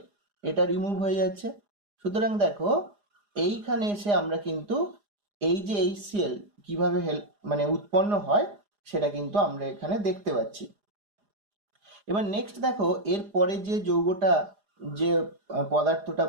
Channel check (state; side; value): late; left; 4.9 ms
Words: এটা রিমুভ হয়ে যাচ্ছে। সুতরাং দেখো এইখানে এসে আমরা কিন্তু এই যে এইচ সিএল কিভাবে মানে উৎপন্ন হয় সেটা কিন্তু আমরা এখানে দেখতে পাচ্ছি। এবার নেক্সট দেখো এর পরে যে যৌগটা যে পদার্থটা